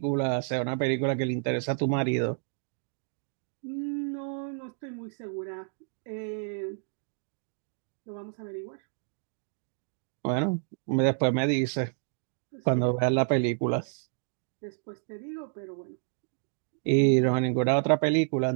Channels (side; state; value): left; silent; digital silence